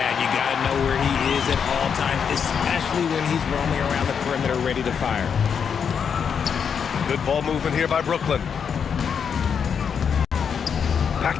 you got to know where he is at all times, especially when he's roaming around the perimeter ready to fire. Good ball movement here by Brooklyn.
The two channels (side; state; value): right; quieter; 7.0 dB